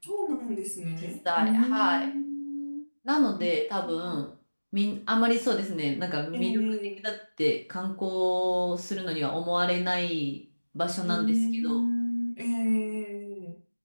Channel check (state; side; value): inverted; both; correlation -1.00